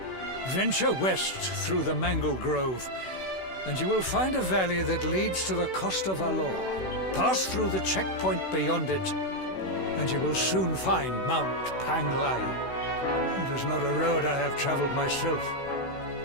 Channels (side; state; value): right; late; 16 ms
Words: Venture west through the Mangle Grove, and you will find a valley that leads to the Coast of Alor. Pass through the checkpoint beyond it, and you will soon find Mount Pang Lai. It is not a road I have traveled myself.